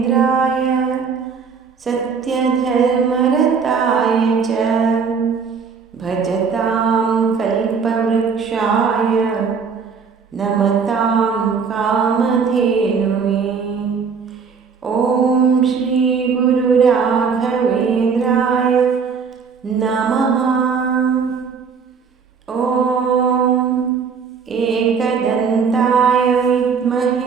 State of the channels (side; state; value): left; quieter; 5.8 dB